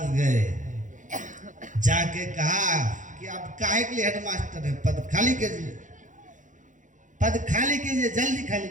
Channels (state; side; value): late; left; 0.37 ms